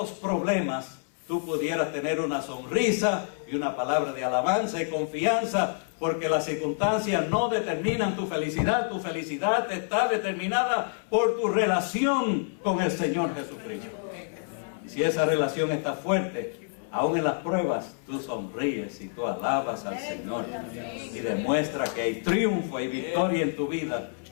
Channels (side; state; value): right; silent; 59 dB below the other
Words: problemas tú pudieras tener una sonrisa y una palabra de alabanza y confianza, porque las circunstancias no determinan tu felicidad está determinada por tu relación con el Señor Jesucristo. Y si esa relación está fuerte, aún en las pruebas, tú sonríes y tú alabas al Señor y demuestra que hay triunfo y victoria en tu vida,